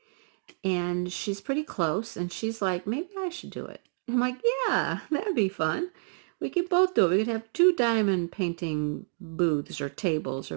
And she's pretty close. And she's like, maybe I should do it. I'm like, yeah, that'd be fun. We could both do it. We could have 2 diamond painting booths or tables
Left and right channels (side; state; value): left; silent; 59 dB below the other